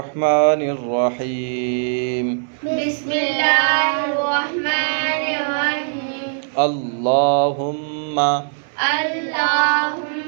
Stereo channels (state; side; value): silent; left; 66 dB below the other